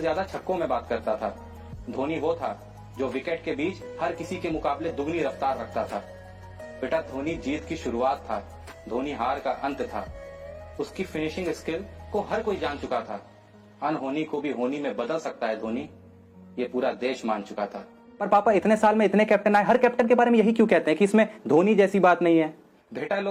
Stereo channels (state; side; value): identical; both; correlation 1.00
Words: छक्कों में बात करता था। धोनी वो था जो विकेट के बीच हर किसी के मुकाबले दुगनी रफ्तार रखता था। बेटा, धोनी जीत की शुरुआत था, धोनी हार का अंत था। उसकी फिनिशिंग स्किल को हर कोई जान चुका था। अनहोनी को भी होनी में बदल सकता है धोनी, ये पूरा देश मान चुका था। पर पापा, इतने साल में इतने कैप्टन आए, हर कैप्टन के बारे में यही क्यों कहते हैं कि इसमें धोनी जैसी बात नहीं है? बेटा,